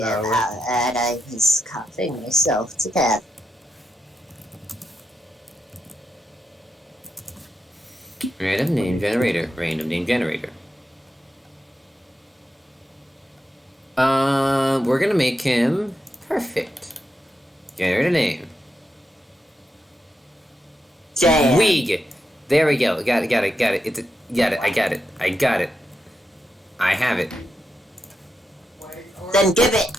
about that. I was coughing myself to death. Random name generator. Random name generator. We're gonna make him perfect. Generate a name. Damn. Weeg. There we go. Got it. Got it. Got it. Got it. I got it. I got it. I have it. Then give it.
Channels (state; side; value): normal; both; correlation 0.85